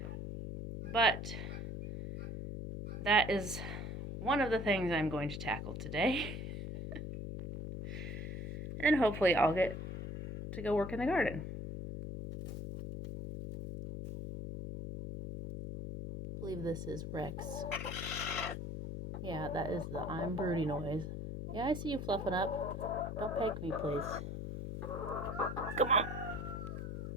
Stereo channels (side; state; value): left; noise; hum, 6 dB below the sound